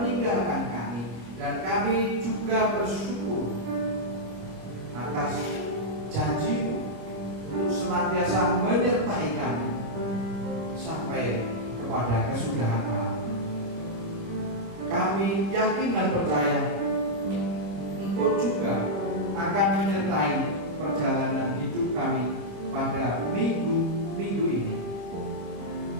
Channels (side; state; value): left; late; 26 ms